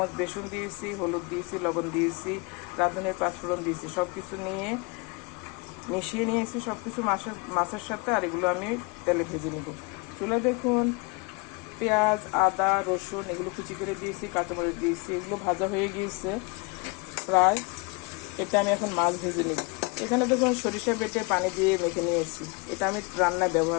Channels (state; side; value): quieter; right; 28.7 dB